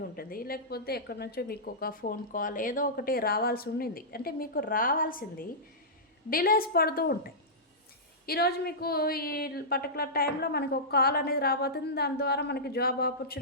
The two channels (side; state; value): both; normal; correlation -0.15